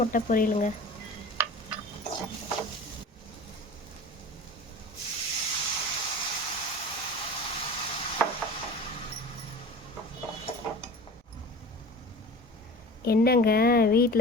முட்டை பொரியலுங்க. என்னங்க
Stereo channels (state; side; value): normal; both; correlation 0.37